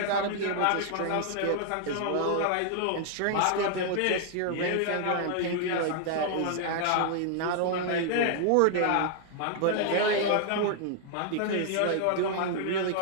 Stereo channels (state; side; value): different; both; correlation 0.00